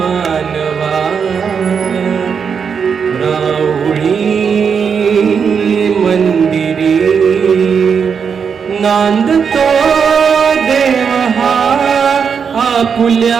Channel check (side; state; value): left; quieter; 6.5 dB